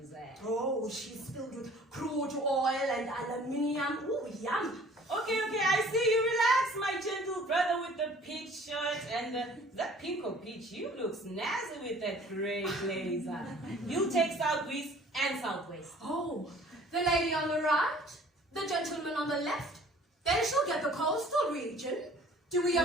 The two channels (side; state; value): both; normal; correlation 0.51